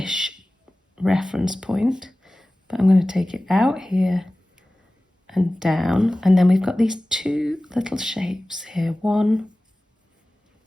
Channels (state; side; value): normal; both; correlation 0.97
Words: reference point, but I'm going to take it out here and down. And then we've got these 2 little shapes here. 1,